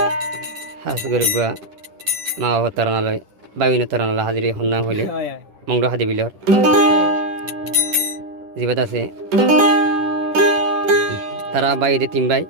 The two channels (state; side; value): late; left; 10 ms